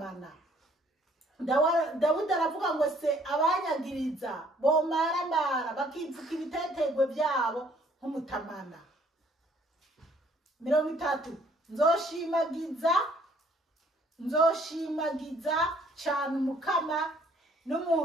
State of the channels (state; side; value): normal; both; correlation 0.61